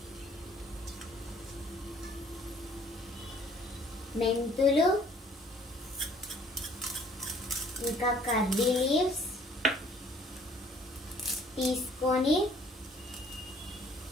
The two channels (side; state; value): both; normal; correlation 0.58